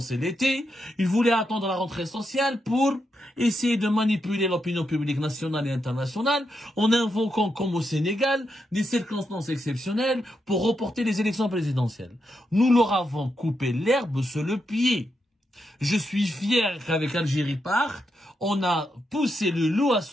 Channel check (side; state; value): both; normal; correlation 0.83